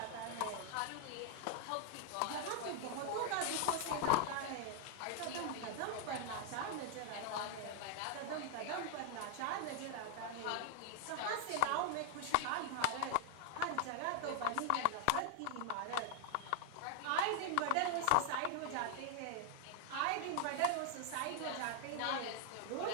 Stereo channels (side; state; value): both; different; correlation 0.00